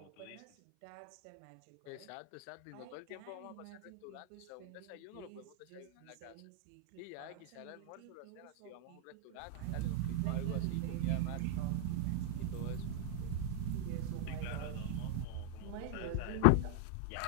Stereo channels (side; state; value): both; different; correlation 0.00